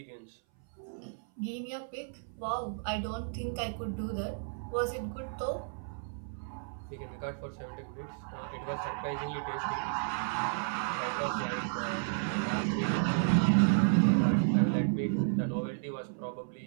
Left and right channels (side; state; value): left; silent; 56 dB below the other